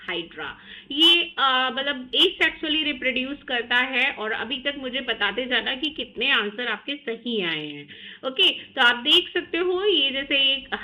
hydra. ये मतलब एसेक्सुअली रिप्रोड्यूस करता है। और अभी तक मुझे बताते जाना कि कितने आंसर आपके सही आए हैं, ओके। तो आप देख सकते हो ये जैसे एक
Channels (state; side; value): identical; both; correlation 1.00